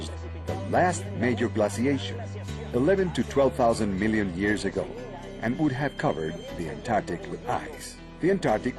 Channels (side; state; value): both; identical; correlation 1.00